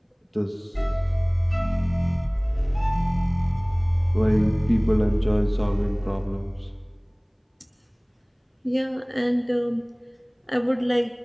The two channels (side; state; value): both; identical; correlation 1.00